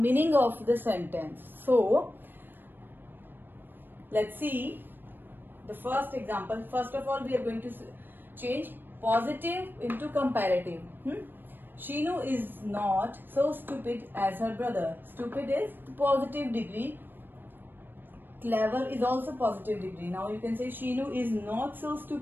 of the sentence. So let's see the first example. First of all, we are going to change positive into comparative. Sheenu is not so stupid as her brother. Stupid is positive degree. Clever is also positive degree. Now you can say Sheenu is not so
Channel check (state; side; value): late; left; 0.094 ms